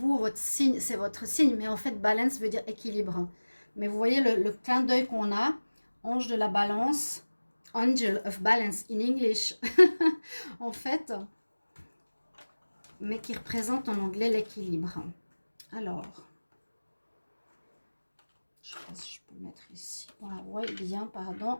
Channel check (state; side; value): inverted; both; correlation -1.00